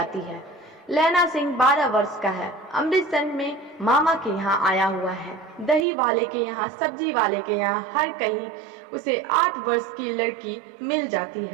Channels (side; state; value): left; drops out; at 5.9 s